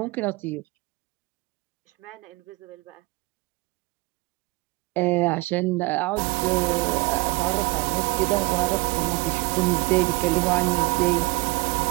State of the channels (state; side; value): quieter; left; 24.8 dB